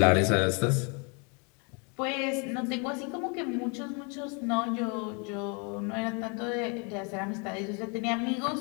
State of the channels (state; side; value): quieter; right; 34.0 dB